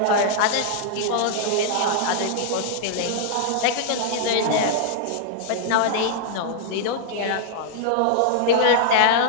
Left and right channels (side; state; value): both; different; correlation -0.01